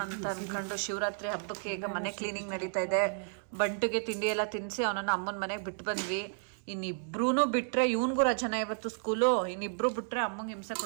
ಅಂತ ಅನ್ಕೊಂಡು ಶಿವರಾತ್ರಿ ಹಬ್ಬಕ್ಕೆ ಈಗ ಮನೆ ಕ್ಲೀನಿಂಗ್ ನಡೀತಾ ಇದೆ. ಬಂಟುಗೆ ತಿಂಡಿ ಎಲ್ಲ ತಿನ್ನಿಸಿ ಅವನನ್ನು ಅಮ್ಮನ ಮನೆಗೆ ಬಿಟ್ಟು ಬಂದ್ವಿ. ಇನ್ನಿಬ್ರೂ ಬಿಟ್ರೆ, ಇವನ್ಗೂ ರಜನ ಇವತ್ತು ಸ್ಕೂಲು, ಇನ್ನಿಬ್ರು ಬಿಟ್ರೆ ಅಮ್ಮಂಗೆ ಹಿಂಸೆ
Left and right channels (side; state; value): left; silent; 56 dB below the other